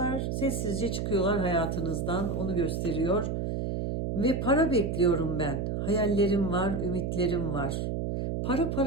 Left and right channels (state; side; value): noise; right; hum, 2 dB below the sound